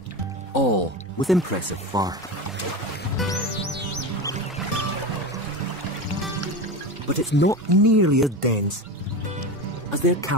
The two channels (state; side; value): normal; both; correlation 0.24